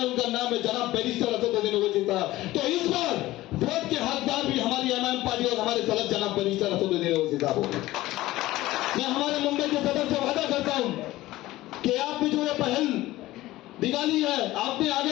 उनका नाम है जनाब बैरिस्टर असदुद्दीन ओवैसी साहब। तो इस बार वोट के हकदार भी हमारी एमआईएम पार्टी और हमारे सदस्य जनाब बैरिस्टर असदुद्दीन ओवैसी साहब होंगे। मैं हमारे मुंबई के सदर से वादा करता हूं कि आपने जो ये पहल निकाली है, आपने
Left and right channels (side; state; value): right; quieter; 17.0 dB